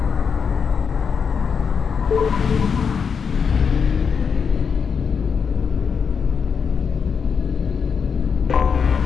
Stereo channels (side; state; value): right; quieter; 6.2 dB